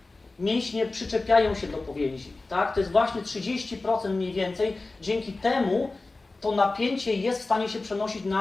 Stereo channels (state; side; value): quieter; right; 3.3 dB